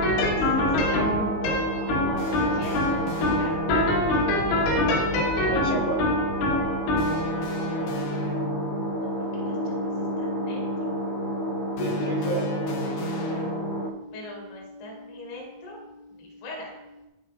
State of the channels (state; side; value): late; right; 19 ms